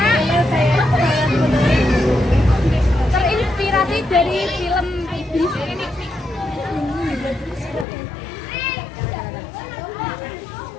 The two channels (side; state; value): right; drops out; at 7.9 s